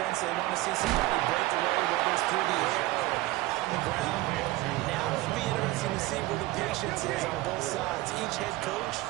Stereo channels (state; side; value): quieter; left; 18.6 dB